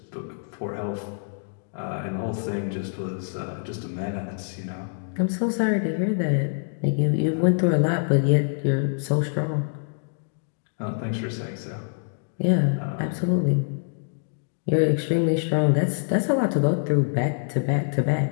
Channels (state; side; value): silent; right; digital silence